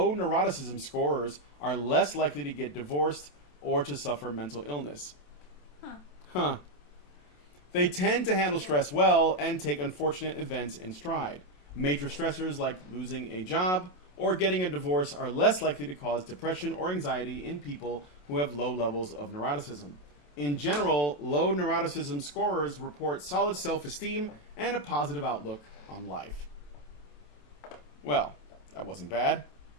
scorers are less likely to get divorced or to suffer mental illness. Huh. They tend to handle stress well and take unfortunate events in stride. Major stressors like losing a job or getting a divorce are less likely to cause depression or anxiety in people who have low levels of neuroticism. In general, low neuroticism scorers report solid self-esteem and a positive outlook on life. Well, that wasn't bad.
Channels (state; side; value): late; right; 27 ms